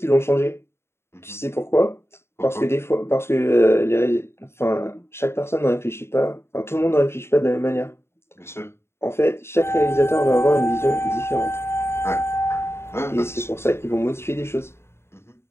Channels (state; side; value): late; right; 0.12 ms